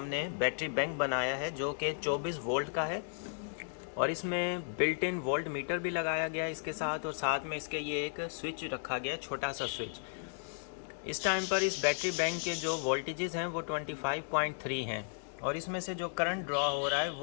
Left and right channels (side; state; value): right; silent; 55 dB below the other